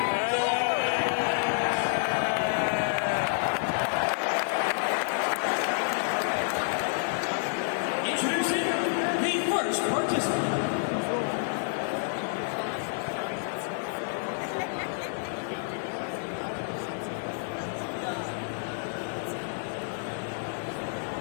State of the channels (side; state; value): right; silent; digital silence